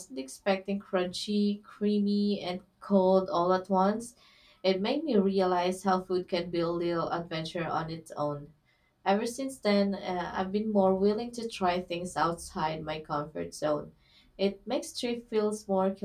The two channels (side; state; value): both; identical; correlation 1.00